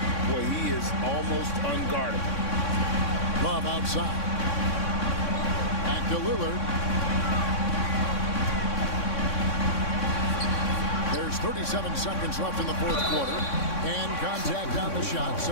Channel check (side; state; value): right; late; 3.6 ms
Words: well, he is almost unguardable. Love outside. Back to Lillard. There's 37 seconds left in the fourth quarter. And contact on the shot,